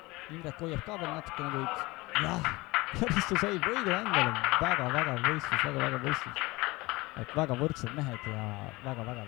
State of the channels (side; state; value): right; quieter; 22.0 dB